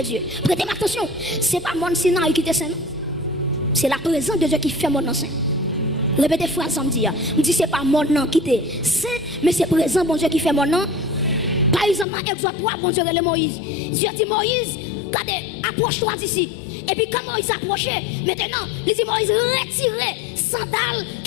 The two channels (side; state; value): right; drops out; at 12.1 s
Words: Dieu. Prêtez attention, ce n'est pas mon Sinaï qui était saint. C'est la présence de Dieu qui fait mon nom saint. Répétez phrase ça me dit. Je dis, ce n'est pas mon nom qui était saint, mais c'est présent, bon Dieu, qui fait mon nom. Par exemple, dans Exode 3, bon Dieu, le Moïse. Dieu dit, Moïse, regardez, approche-toi d'ici. Et puis quand Moïse s'approchait, maintenant, il dit Moïse, retirez sandales